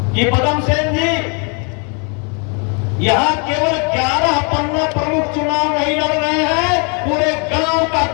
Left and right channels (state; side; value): quieter; right; 36.1 dB